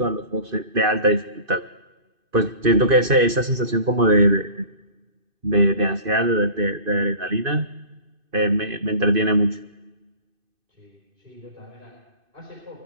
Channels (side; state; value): left; late; 2.5 ms